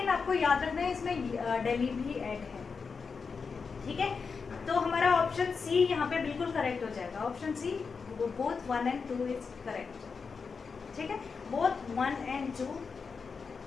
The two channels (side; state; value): right; quieter; 5.2 dB